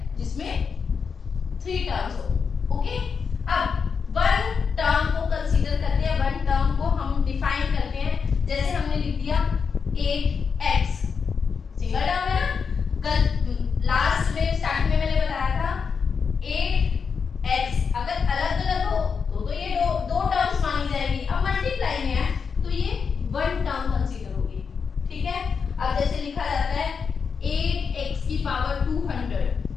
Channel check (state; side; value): quieter; right; 5.9 dB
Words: जिसमें 3 टर्म्स हो। ओके, अब वन टर्म को कंसीडर करते हैं, वन टर्म को हम डिफाइन करते हैं। जैसे हमने लिख दिया 8x, सिंगल टर्म है ना। कल लास्ट में स्टार्टिंग में मैंने बताया था 8x अगर अलग अलग हो तो ये दो टर्म्स मानी जाएगी। अब मल्टीप्लाई में है तो ये वन टर्म कंसीडर होगी। ठीक है, अब जैसे लिखा जाता है 8x की पावर 200,